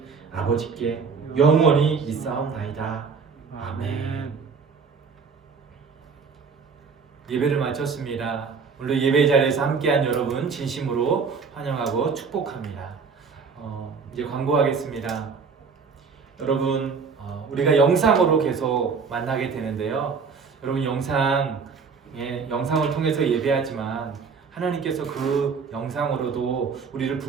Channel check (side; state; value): left; quieter; 5.4 dB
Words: 아버지께 영원히 있사옵나이다. 아멘. 예배를 마쳤습니다. 오늘 예배 자리에서 함께한 여러분 진심으로 환영하고 축복합니다. 이제 광고하겠습니다. 여러분 우리가 영상으로 계속 만나게 되는데요. 여러분 영상을 통해서 예배하지만 하나님께서 그 영상으로도 우리를